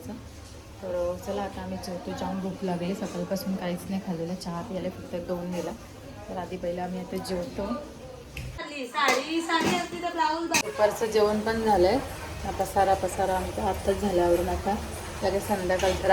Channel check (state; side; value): identical; both; correlation 1.00